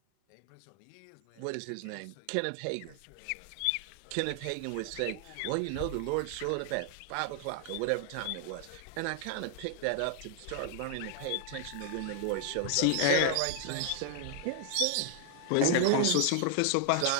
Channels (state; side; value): different; both; correlation 0.00